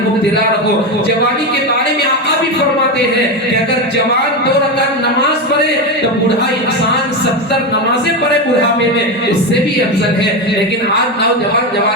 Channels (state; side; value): normal; both; correlation 0.14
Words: مبتلا رہو۔ جوانی کے بارے میں آقا بھی فرماتے ہیں کہ اگر جوان 2 رکعت نماز پڑھے تو بوڑھا انسان 70 نمازیں پڑھے بڑھاپے میں، اس سے بھی افضل ہے۔ لیکن آج نوجوان